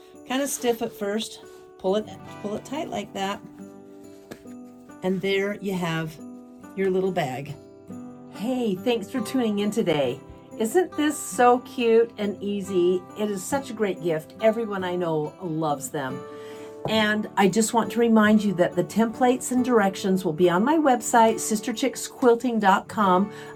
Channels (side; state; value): both; identical; correlation 1.00